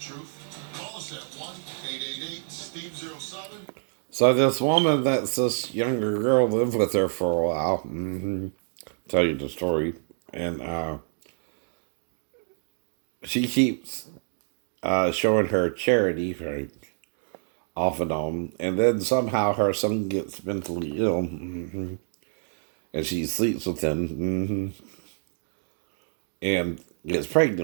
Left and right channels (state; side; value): silent; left; digital silence